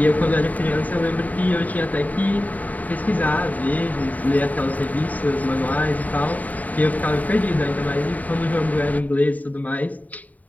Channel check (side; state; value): right; late; 0.074 ms